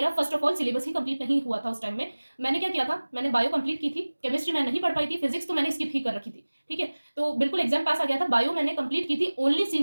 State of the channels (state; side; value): inverted; both; correlation -1.00